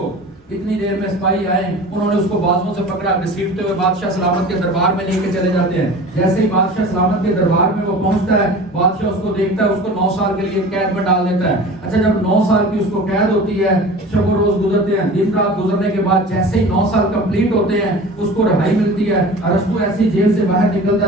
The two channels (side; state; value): both; normal; correlation 0.38